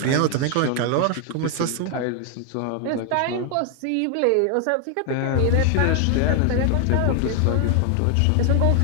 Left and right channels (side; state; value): both; different; correlation 0.00